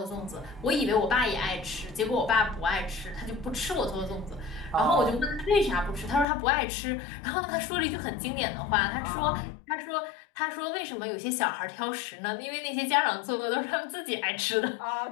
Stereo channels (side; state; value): right; drops out; at 6.2 s